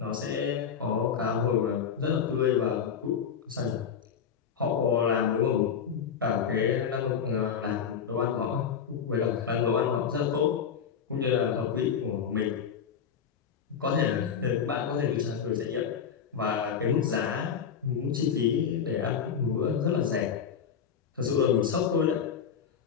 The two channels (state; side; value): quieter; right; 7.3 dB